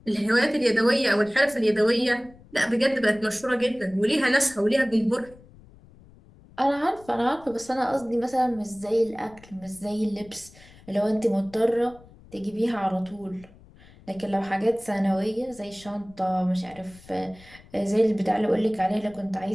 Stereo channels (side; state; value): left; noise; rumble, 24 dB below the sound